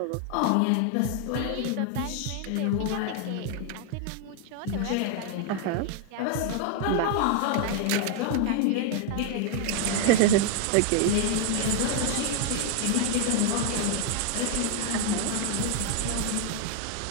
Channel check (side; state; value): both; different; correlation 0.00